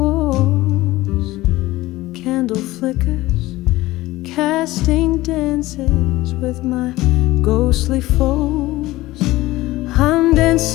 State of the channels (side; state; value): right; quieter; 18.1 dB